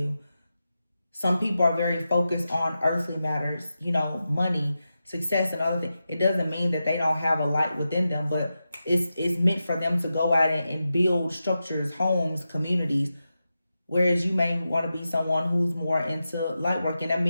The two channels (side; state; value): both; inverted; correlation -0.91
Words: Some people are very focused on earthly matters, money, success, and other things. It doesn't mean that they don't have a light within them, but it's meant for them to go out and build structures, homes, communities. Whereas you may want to be someone who's more into light work.